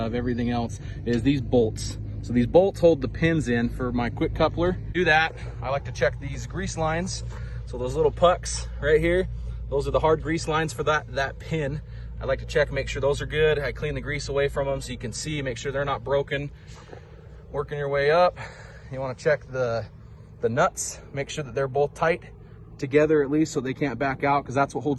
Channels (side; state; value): both; identical; correlation 1.00